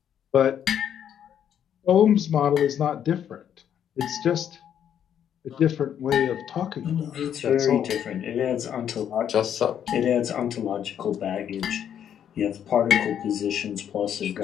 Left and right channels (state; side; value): quieter; right; 9.3 dB